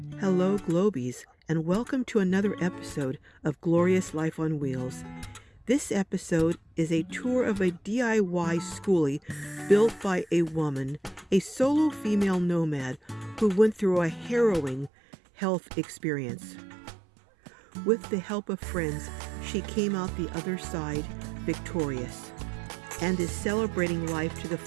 Hello, Globies, and welcome to another episode of Glorious Life on Wheels. This episode is a tour of a DIY skoolie built by a woman, a solo female nomad who went through a harrowing health experience. With the help of friends, she came out the other side victorious and is celebrating life to the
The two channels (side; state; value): left; drops out; at 14.9 s